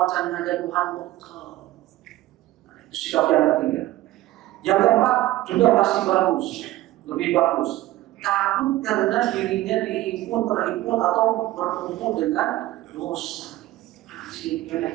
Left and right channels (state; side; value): quieter; left; 16.3 dB